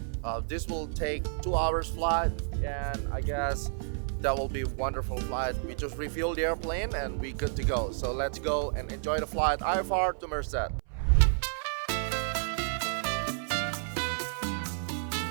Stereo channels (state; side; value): silent; left; 57 dB below the other